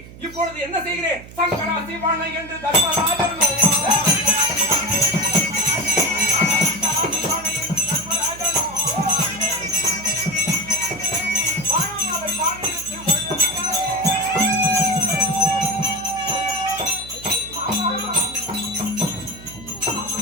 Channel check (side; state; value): right; noise; hum, 17 dB below the sound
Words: இப்பொழுது என்ன செய்கிறேன்? சங்கரா சிவான என்று தர்மராஜன்